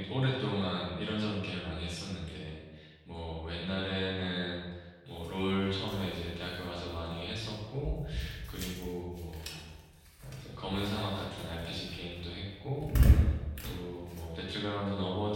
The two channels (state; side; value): identical; both; correlation 1.00